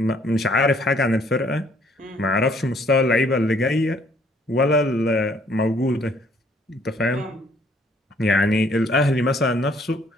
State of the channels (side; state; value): both; normal; correlation 0.63